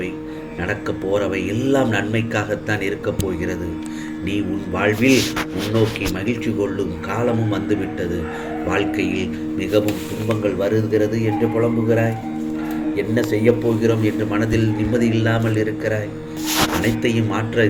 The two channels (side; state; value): both; identical; correlation 1.00